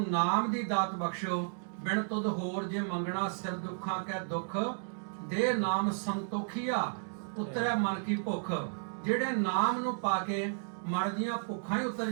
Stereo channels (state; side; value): silent; left; digital silence